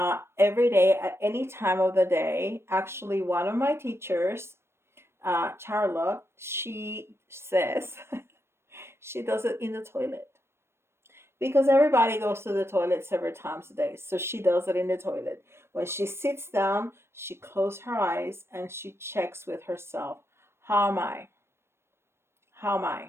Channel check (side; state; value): left; late; 0.12 ms